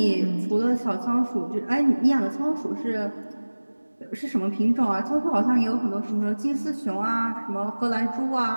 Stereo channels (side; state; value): both; inverted; correlation -1.00